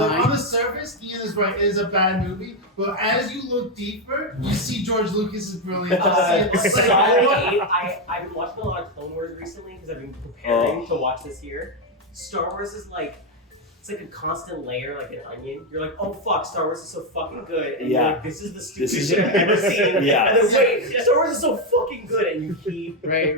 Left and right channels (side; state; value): both; normal; correlation 0.05